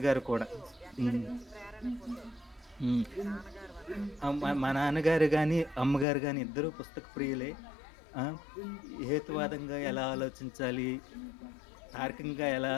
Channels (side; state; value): right; drops out; at 6.1 s